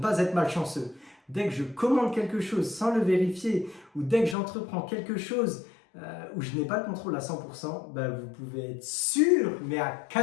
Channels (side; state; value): right; drops out; at 4.4 s